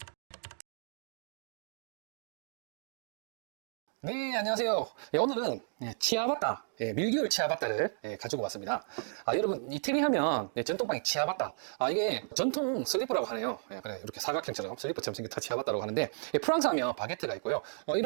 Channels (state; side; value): silent; left; digital silence